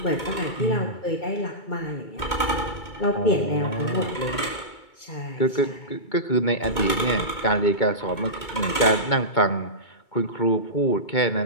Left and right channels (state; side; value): late; right; 2.2 ms